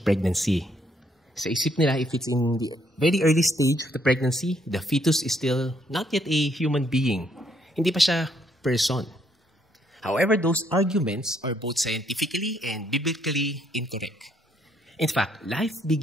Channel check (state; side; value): normal; both; correlation 0.70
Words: pregnancy. Sa isip nila, if it's in the very early stage of the pregnancy, the fetus is still not yet a human being. Hindi pa siya person. However, those arguments are both scientifically and biblically incorrect. In fact, life